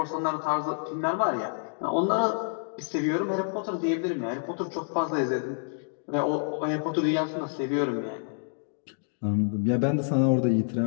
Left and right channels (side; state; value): right; silent; digital silence